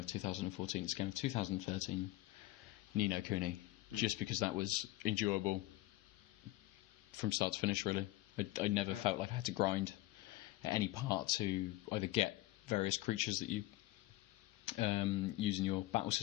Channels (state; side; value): quieter; right; 17.5 dB